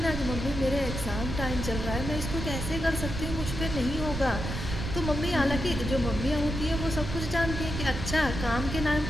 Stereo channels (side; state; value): right; noise; rumble, 5 dB below the sound